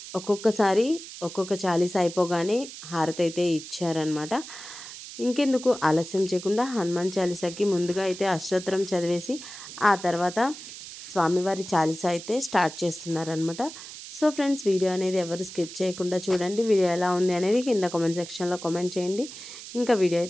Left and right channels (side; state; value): right; noise; hiss, 13 dB below the sound